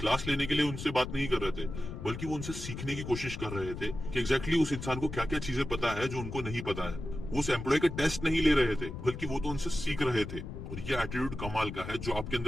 लेने के लिए उनसे बात नहीं कर रहे थे, बल्कि वो उनसे सीखने की कोशिश कर रहे थे कि एग्जैक्टली उस इंसान को क्या क्या चीजें पता है जो उनको नहीं पता है। वो उस एम्प्लॉय का टेस्ट नहीं ले रहे थे, बल्कि वो तो उनसे सीख रहे थे। और ये एटीट्यूड कमाल का है, जो आपके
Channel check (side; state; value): left; noise; rumble, 8 dB below the sound